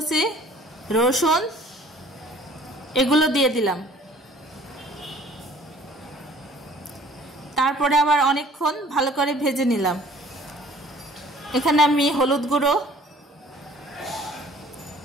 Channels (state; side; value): normal; both; correlation 0.53